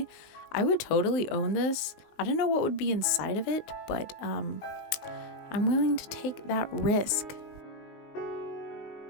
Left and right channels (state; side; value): late; right; 19 ms